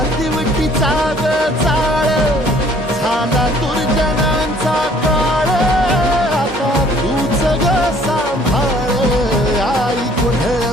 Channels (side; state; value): both; normal; correlation 0.57